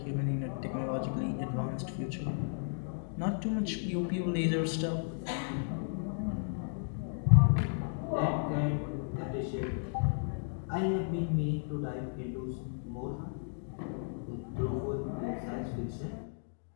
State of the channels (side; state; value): right; silent; digital silence